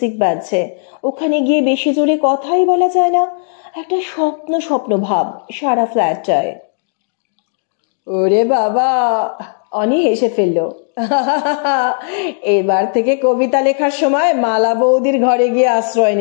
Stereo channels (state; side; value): silent; right; digital silence